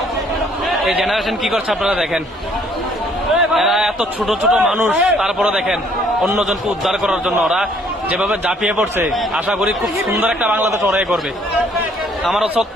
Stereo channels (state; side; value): normal; both; correlation 0.62